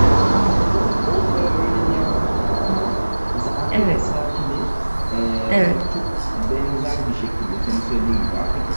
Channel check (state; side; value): inverted; both; correlation -1.00